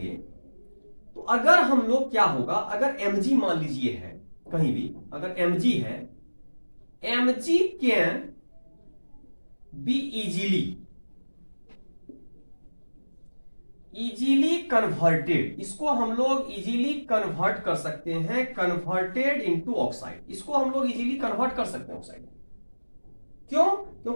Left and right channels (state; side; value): inverted; both; correlation -1.00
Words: तो अगर हम लोग क्या होगा, अगर Mg मान लीजिए है कहीं भी, अगर Mg है, Mg can be easily converted, इसको हम लोग इजीली कन्वर्ट कर सकते हैं, कन्वर्टेड इनटू ऑक्साइड, इसको हम लोग इजीली कन्वर्ट कर सकते हैं ऑक्साइड। क्यों?